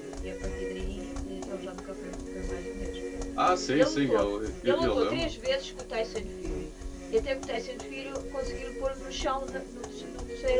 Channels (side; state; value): both; identical; correlation 1.00